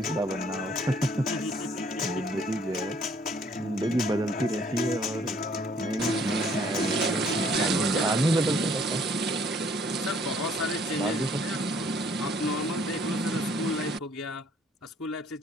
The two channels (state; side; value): normal; both; correlation 0.61